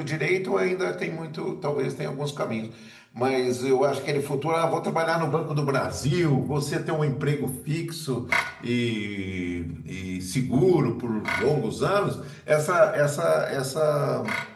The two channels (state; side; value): identical; both; correlation 1.00